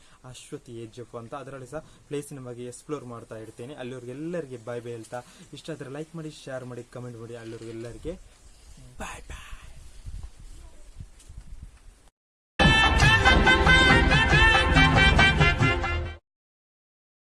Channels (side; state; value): both; identical; correlation 1.00